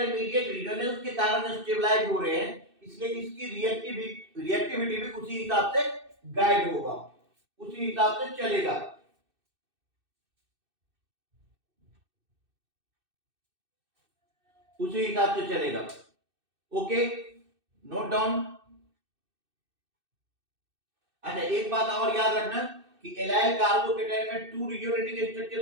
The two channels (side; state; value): left; late; 2.6 ms